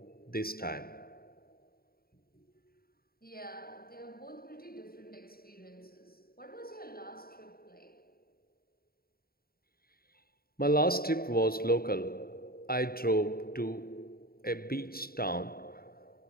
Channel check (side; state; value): right; late; 0.44 ms